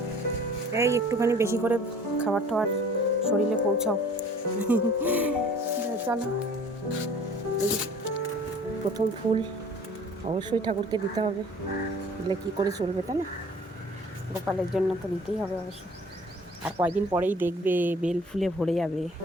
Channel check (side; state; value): both; normal; correlation 0.49